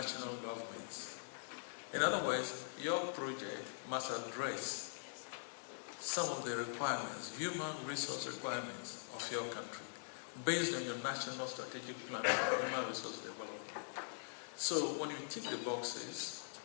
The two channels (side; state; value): right; silent; digital silence